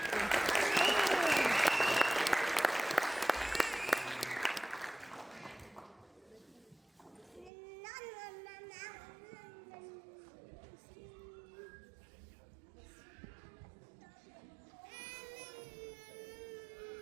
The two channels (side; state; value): left; drops out; at 7.5 s